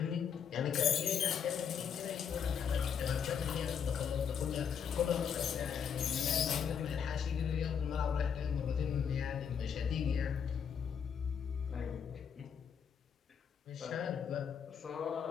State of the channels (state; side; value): quieter; right; 7.5 dB